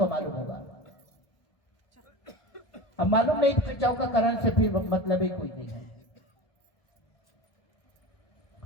मालूम होगा, अब मालूम नहीं तो चौका कराने से फिर मतलब ही कोई नहीं है।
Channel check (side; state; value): right; late; 1.2 ms